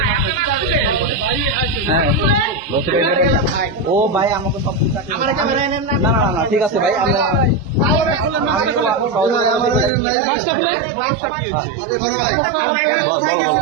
ও ভাই আমাকে সব না না না ঠিক আছে ভাই,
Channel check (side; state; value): left; drops out; at 9.9 s